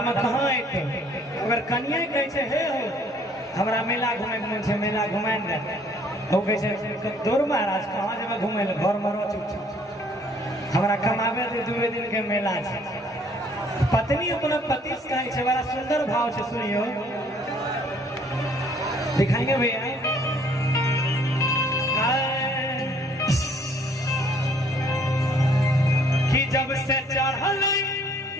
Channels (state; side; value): normal; both; correlation 0.60